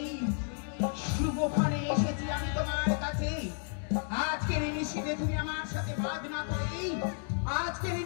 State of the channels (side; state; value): right; silent; 56 dB below the other